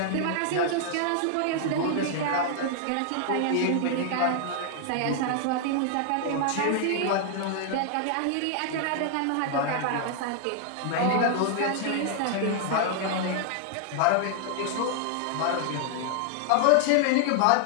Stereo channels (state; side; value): different; both; correlation 0.00